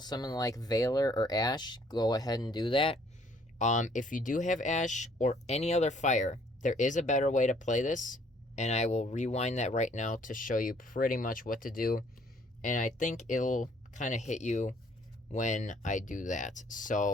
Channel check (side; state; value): both; normal; correlation 0.62